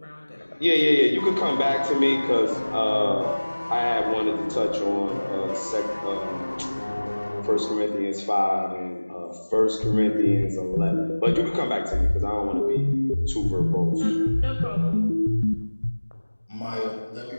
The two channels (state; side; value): inverted; both; correlation -1.00